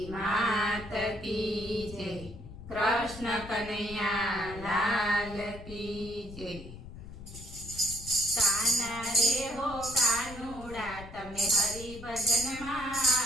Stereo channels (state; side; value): noise; left; rumble, 14 dB below the sound